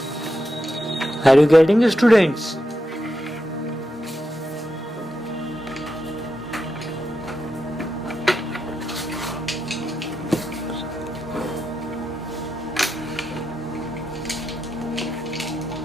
Are you getting it, students?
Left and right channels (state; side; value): normal; both; correlation 0.86